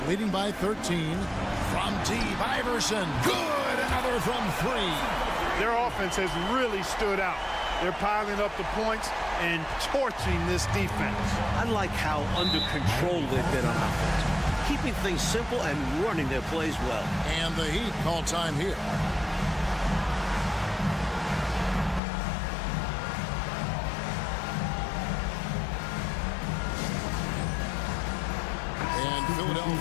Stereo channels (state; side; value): drops out; right; at 22.0 s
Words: leading by 13. From deep, Iverson. Good! Another from three. Their offense has really stood out. They're piling up the points and torching this defense. I like how under control they've been on offense, keeping things simple and running their plays well. And the Heat call time here. And